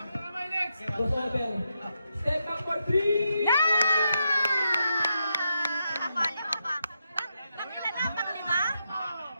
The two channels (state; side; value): inverted; both; correlation -0.84